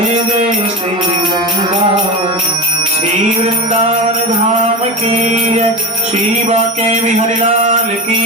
जय श्री वृंदावन। श्री वृंदावन धाम की जय, श्री बाके बिहारी लाल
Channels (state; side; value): normal; both; correlation 0.24